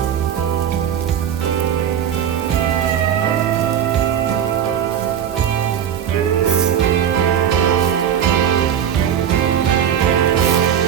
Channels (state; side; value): quieter; left; 9.1 dB